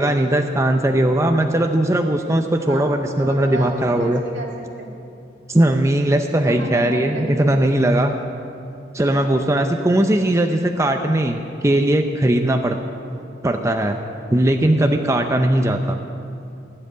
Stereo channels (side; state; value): both; normal; correlation 0.80